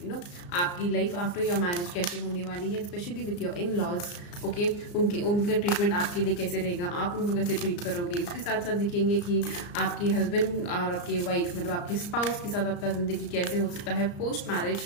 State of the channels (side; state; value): right; late; 34 ms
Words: आपकी लाइफ आफ्टर योर मैरिज कैसे होने वाली है, specially with your in laws. Okay, उनका ट्रीटमेंट आपके लिए कैसे रहेगा, आप उनको कैसे ट्रीट करोगे। उसके साथ साथ देखेंगे कि आपके हस्बैंड और आपके वाइफ मतलब आपके स्पाउस के साथ आपका ज़िंदगी कैसे हो सकता है post marriage.